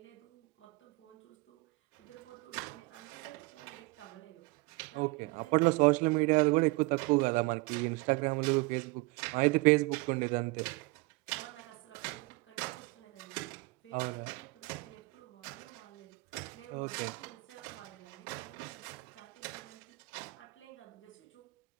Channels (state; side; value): quieter; left; 25.2 dB